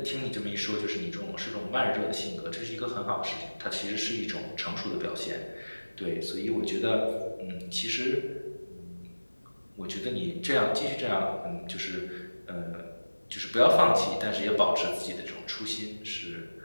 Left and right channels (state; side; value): inverted; both; correlation -1.00